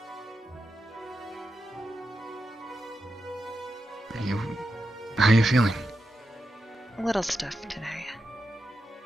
How are you feeling? A little stiff today.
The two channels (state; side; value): normal; both; correlation 0.88